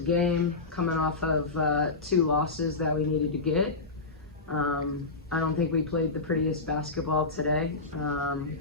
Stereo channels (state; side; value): quieter; right; 3.8 dB